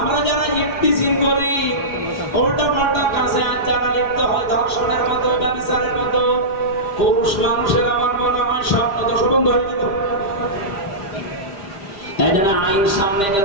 যারা ইফতিজিং করি, উল্টা পাল্টা কাজে আজ যারা লিপ্ত হয়, ধর্ষণের মতো, ব্যভিচারের মতো, পুরুষ মানুষের আমার মনে হয় স্বপ্ন দোষ বন্ধ হয়ে যেত। এই জন্য আইন সামনে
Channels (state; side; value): late; right; 5.0 ms